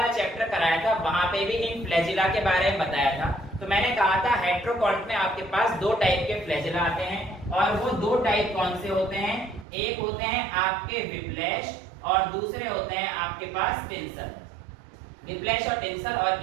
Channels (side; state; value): left; drops out; at 9.7 s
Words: चैप्टर कराया था वहां पे भी इन फ्लैजिला के बारे में बताया था, तो मैंने कहा था हेट्रोकॉन्ट में आपके पास दो टाइप के फ्लैजिला आते हैं, और वो दो टाइप कौन से होते हैं, एक होते हैं आपके विप्लैश और दूसरे होते हैं आपके पास टिंसल। विप्लैश और टिंसल,